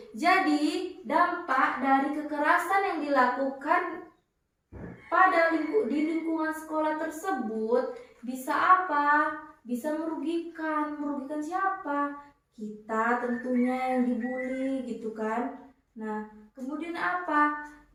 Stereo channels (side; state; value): both; identical; correlation 1.00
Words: Jadi, dampak dari kekerasan yang dilakukan di lingkungan sekolah tersebut bisa apa? Bisa merugikan. Merugikan siapa? Kita tentunya yang dibully gitu kan. Nah, kemudian apa?